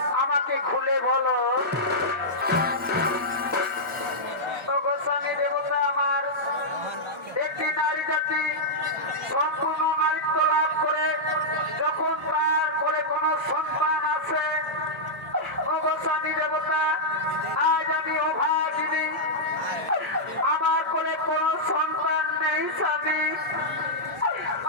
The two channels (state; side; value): normal; both; correlation -0.09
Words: আমাকে খুলে বলো। গোস্বামী দেবতা আমার, একটি নারী জাতি সম্পূর্ণ নারীত্ব লাভ করে যখন তার করে কোনো সন্তান আছে, গোস্বামী দেবতা আজ আমি অভাগিনী, আমার কোলে কোনো সন্তান নেই স্বামী,